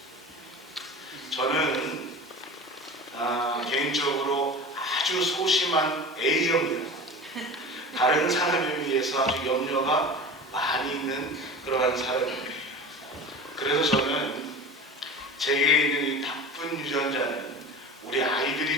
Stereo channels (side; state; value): both; normal; correlation 0.34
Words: 저는 개인적으로 아주 소심한 A형입니다. 다른 사람에 비해서 아주 염려가 많이 있는 그러한 사람입니다. 그래서 저는 제게 있는 이 나쁜 유전자는 우리 아이들이